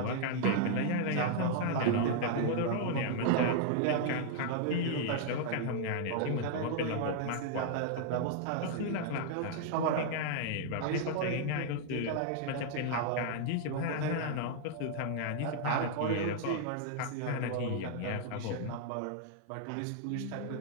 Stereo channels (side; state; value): both; different; correlation -0.01